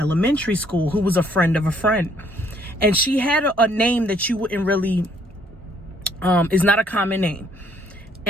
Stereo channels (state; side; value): normal; both; correlation 0.65